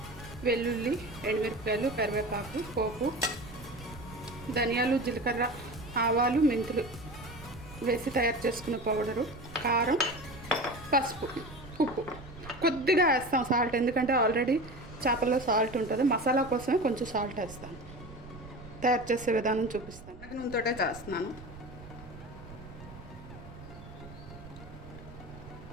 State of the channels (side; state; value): right; noise; rumble, 16 dB below the sound